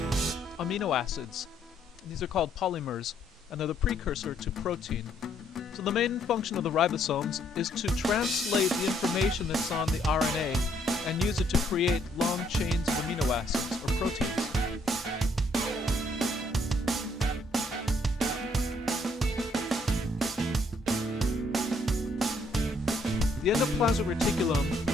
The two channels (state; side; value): normal; both; correlation 0.69